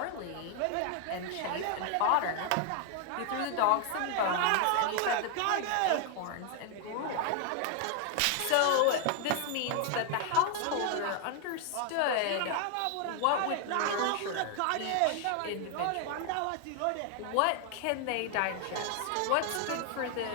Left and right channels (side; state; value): both; different; correlation 0.00